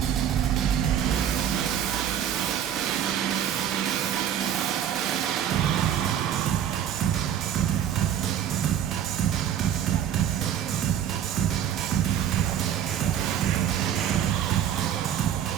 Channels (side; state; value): left; quieter; 9.9 dB